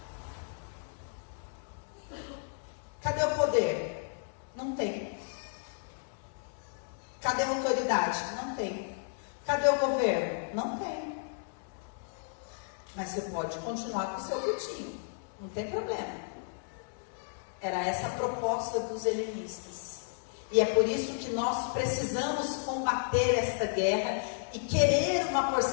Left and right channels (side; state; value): right; silent; 56 dB below the other